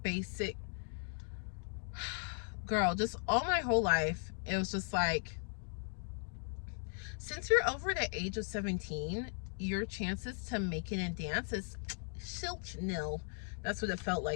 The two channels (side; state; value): right; silent; 53 dB below the other